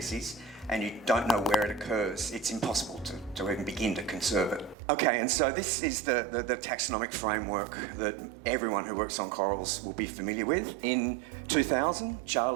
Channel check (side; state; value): left; drops out; at 4.8 s